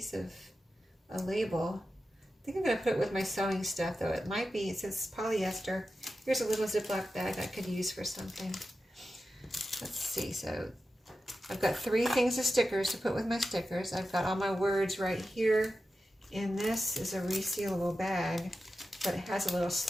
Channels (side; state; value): both; normal; correlation 0.92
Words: of a label. I think I'm going to put it with my sewing stuff, though. It might be, it says polyester. Here's a little Ziploc bag I could use for something. Let's see. So I've got 3 things of stickers to put with my stickers. I've got all my words right here. And this is a resealable bag, but it has a little